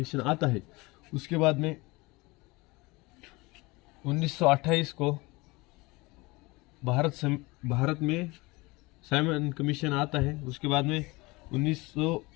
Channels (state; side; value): quieter; right; 23.6 dB